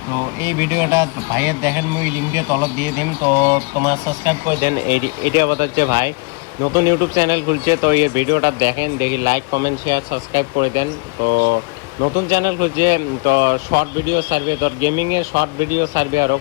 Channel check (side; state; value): right; quieter; 29.6 dB